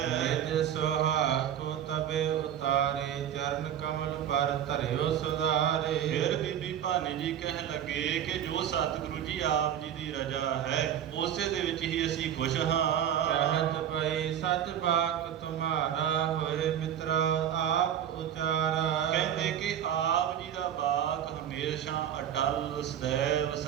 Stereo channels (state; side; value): quieter; left; 9.9 dB